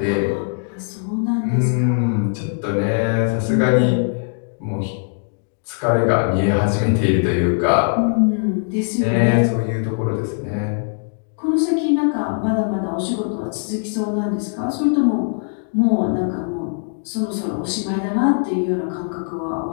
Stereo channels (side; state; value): right; silent; digital silence